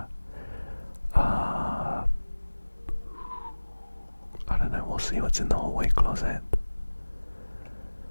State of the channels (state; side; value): inverted; both; correlation -1.00